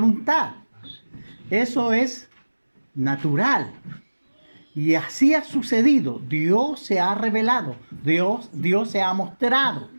Eso es natural. Y así ha sucedido. Dios se ha revelado. Dios se ha mostrado.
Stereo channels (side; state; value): both; inverted; correlation -1.00